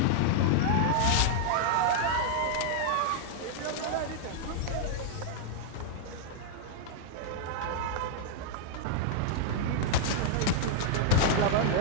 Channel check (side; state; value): both; different; correlation -0.01